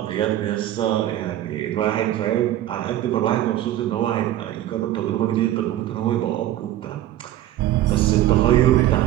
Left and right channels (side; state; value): left; quieter; 13.4 dB